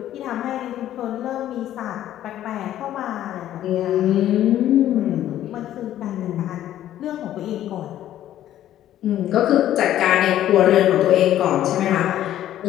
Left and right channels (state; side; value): quieter; right; 12.3 dB